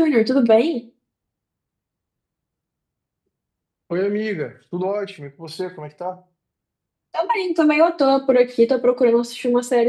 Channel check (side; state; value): both; identical; correlation 1.00